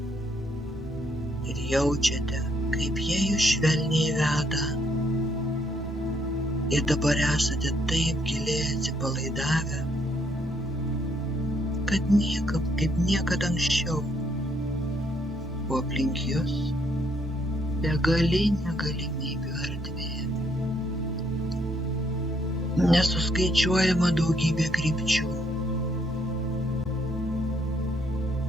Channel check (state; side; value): normal; both; correlation 0.71